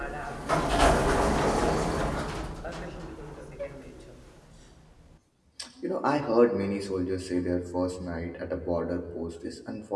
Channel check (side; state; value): both; identical; correlation 1.00